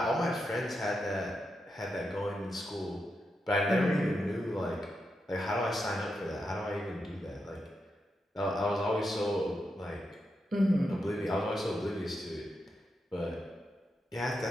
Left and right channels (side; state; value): both; normal; correlation 0.86